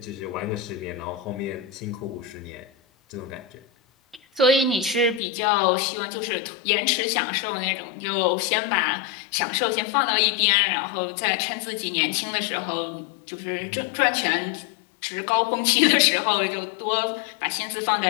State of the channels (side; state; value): right; drops out; at 5.2 s